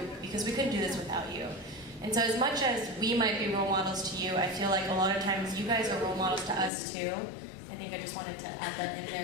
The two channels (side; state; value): right; drops out; at 6.7 s